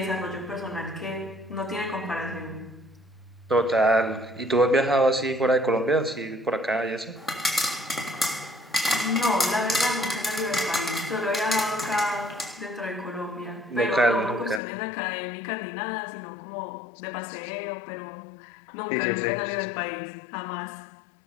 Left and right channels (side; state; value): right; drops out; at 14.6 s